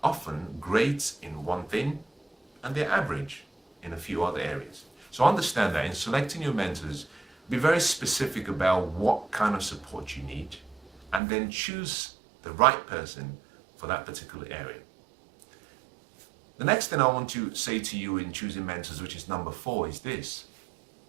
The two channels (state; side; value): drops out; left; at 11.2 s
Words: often great in one thing and they're average in a few other areas. So understand that in selecting your mentors, be very specific about what kind of support you need and then choose the right person for that particular area. The next thing I want to say to you in choosing mentors, which is number 4, is this.